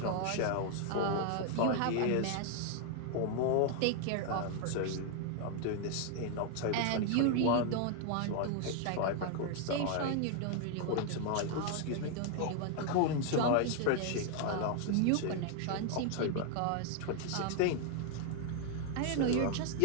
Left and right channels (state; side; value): different; both; correlation 0.00